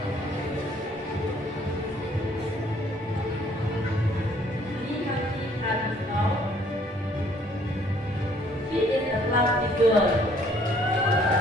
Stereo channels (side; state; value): both; normal; correlation 0.61